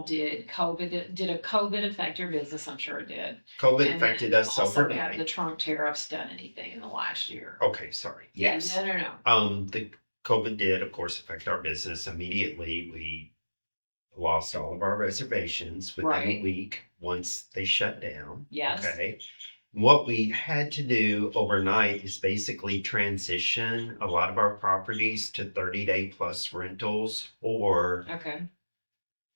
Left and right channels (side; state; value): both; inverted; correlation -1.00